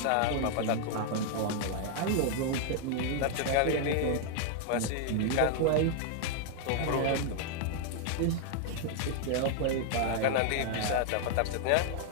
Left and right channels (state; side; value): different; both; correlation 0.00